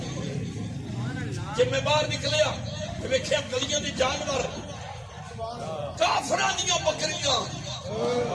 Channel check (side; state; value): both; identical; correlation 1.00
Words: جب میں باہر نکلیا دیکھے اب گلیاں دی جانور کافراں دیاں بکریاں